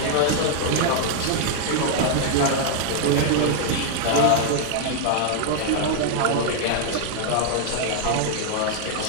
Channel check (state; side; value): different; both; correlation 0.00